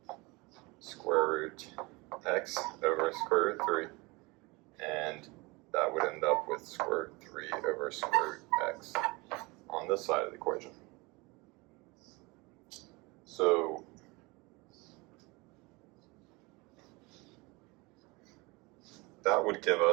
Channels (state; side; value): quieter; left; 25.1 dB